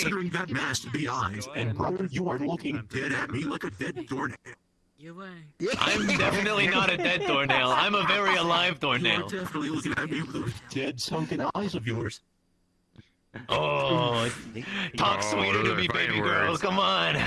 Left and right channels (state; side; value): identical; both; correlation 1.00